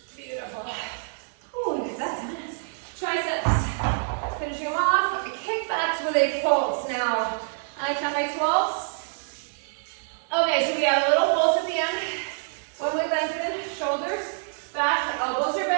Beautiful. Ooh, get that done. Triceps. Finishing them off. Kickbacks with a pulse now. I count my 12s. Okay, so we have a little pulse at the end. When we lengthen, shoulders back, elbows are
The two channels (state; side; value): silent; left; digital silence